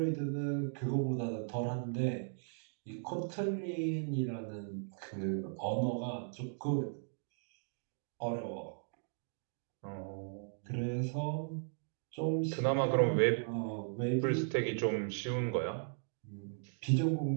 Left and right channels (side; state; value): left; silent; digital silence